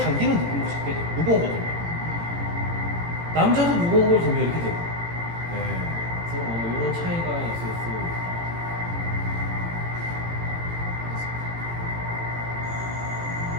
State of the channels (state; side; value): late; left; 18 ms